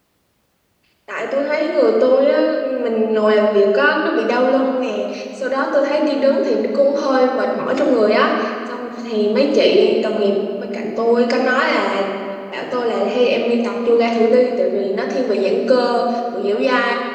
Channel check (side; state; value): both; identical; correlation 1.00